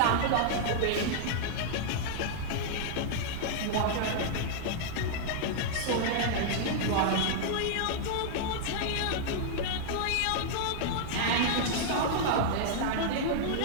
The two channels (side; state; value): both; different; correlation -0.01